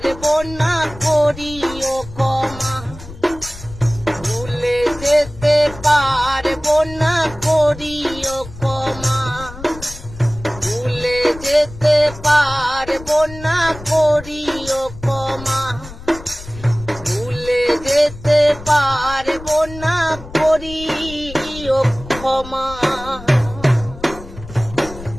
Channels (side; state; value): left; noise; rumble, 15 dB below the sound